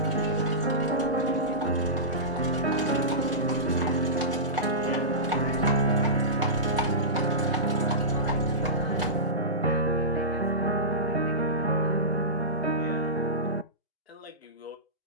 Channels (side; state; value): both; normal; correlation -0.18